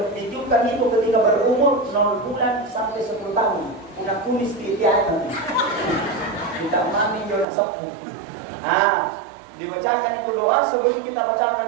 ditujukan itu ketika berumur 0 bulan sampai 10 tahun Bunda kumis di tiada kita mami jodoh sepuh dibacakan itu doa sebelum kita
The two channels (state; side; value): drops out; left; at 7.5 s